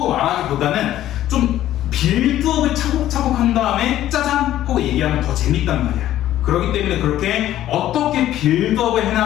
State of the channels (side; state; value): right; quieter; 13.0 dB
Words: 말하기보다는 좀 빌드업을 차곡차곡 한 다음에 짜잔 하고 얘기하면 더 재밌단 말이야. 그렇기 때문에 그렇게 어떻게 빌드업을